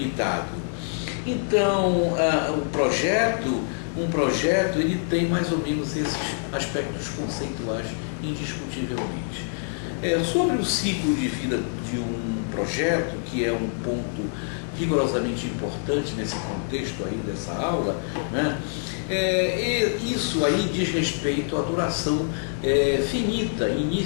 Então, um projeto ele tem mais ou menos esses aspectos conceituais indiscutivelmente. Sobre o ciclo de vida de um projeto, que é um ponto rigorosamente importante nesse contexto aí dessa aula, né? Isso aí diz respeito à duração finita,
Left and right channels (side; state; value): right; silent; 61 dB below the other